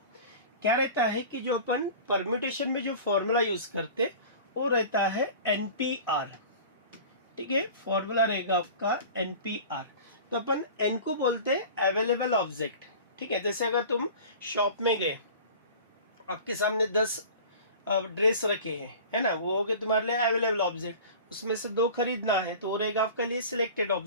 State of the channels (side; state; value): both; inverted; correlation -0.39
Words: क्या रहता है कि जो अपन परम्यूटेशन में जो फॉर्मूला यूज करते वो रहता है NPR, ठीक है। फॉर्मूला रहेगा आपका NPR। तो अपन n को बोलते हैं अवेलेबल ऑब्जेक्ट, ठीक है। जैसे अगर तुम शॉप में गए, आपके सामने 10 ड्रेस रखे हैं, है ना, वो हो गए तुम्हारे लिए अवेलेबल ऑब्जेक्ट। उसमें से 2 खरीदना है तो वो रहेगा आपके लिए सिलेक्टेड